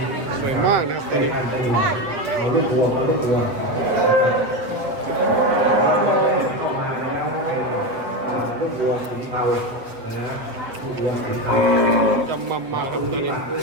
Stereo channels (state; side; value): late; left; 8.1 ms